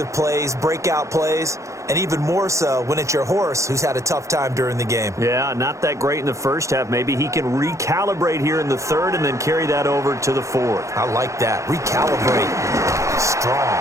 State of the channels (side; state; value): left; late; 0.15 ms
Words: plays, breakout plays, and even more so when it's your horse who's had a tough time during the game. Yeah, not that great in the first half. Maybe he can recalibrate here in the third and then carry that over to the fourth. I like that. Recalibrate. Strong.